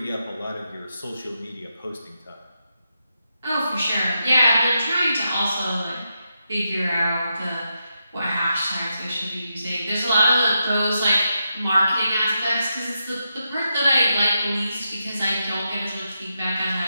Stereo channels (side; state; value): both; inverted; correlation -0.85